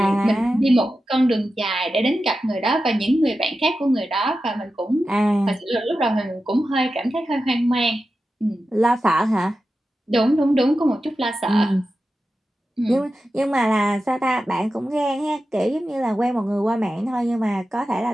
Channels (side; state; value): both; normal; correlation 0.92